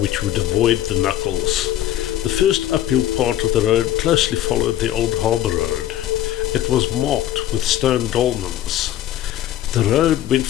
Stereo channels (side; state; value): right; quieter; 12.5 dB